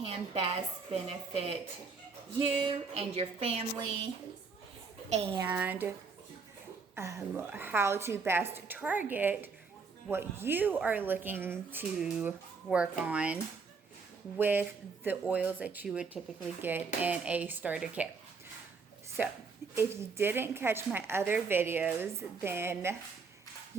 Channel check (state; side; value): quieter; left; 4.9 dB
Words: best benefit you and your family, and how to best target what you are looking to work on with the oils that you would typically get in a starter kit. So if you didn't catch my other videos, then